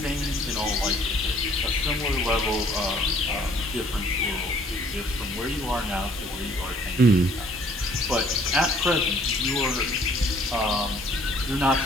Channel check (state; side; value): normal; both; correlation 0.59